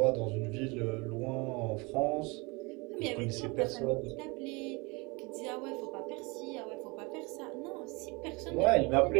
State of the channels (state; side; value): quieter; left; 26.9 dB